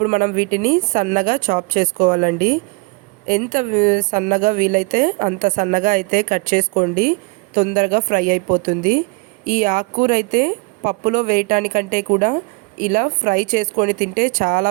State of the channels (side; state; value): left; quieter; 28.4 dB